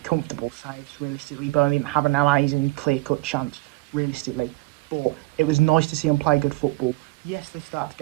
saves. Realistically, Burnley didn't have an amazing clear-cut chance. Realistically, but it was nice to see them play good football. Yes, they started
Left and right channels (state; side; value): quieter; left; 20.9 dB